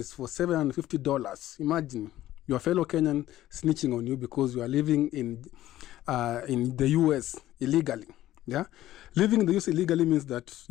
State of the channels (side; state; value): right; quieter; 14.2 dB